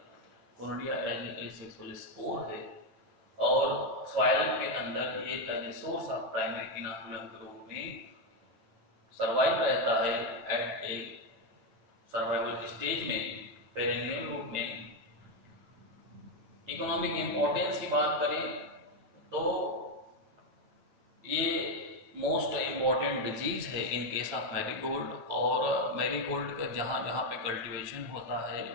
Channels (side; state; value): left; late; 9.0 ms